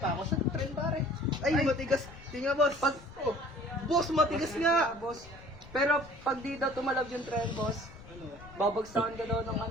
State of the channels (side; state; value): left; noise; rumble, 18 dB below the sound